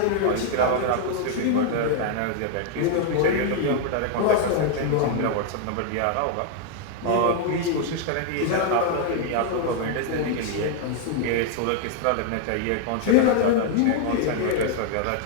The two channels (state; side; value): different; both; correlation 0.00